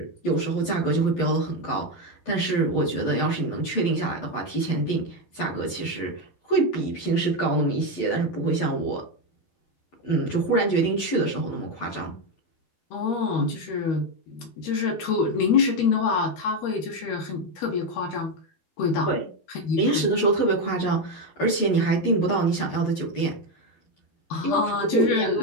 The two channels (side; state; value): right; late; 12 ms